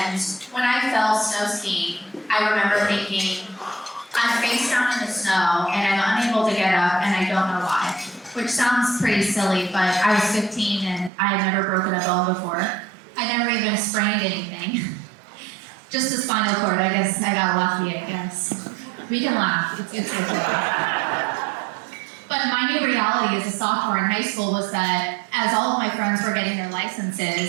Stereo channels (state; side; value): drops out; left; at 11.1 s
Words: when I fell snow skiing, I remember thinking, I'm face down in the snow and I'm unable to get up and I don't know why. Which sounds pretty silly, but I was 15 and I had never broken a bone before. I never even sprained anything. Just a spinal cord, I guess I got lucky, I guess. We can laugh, it's good to laugh. But my new reality as a sophomore in high school was that as all of my friends were getting their